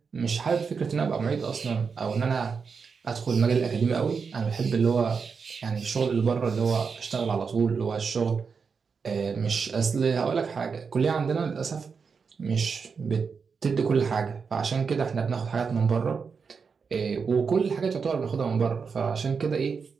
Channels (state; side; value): quieter; left; 5.6 dB